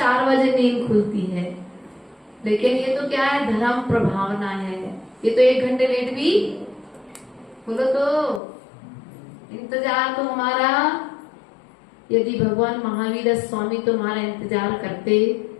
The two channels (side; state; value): right; drops out; at 8.4 s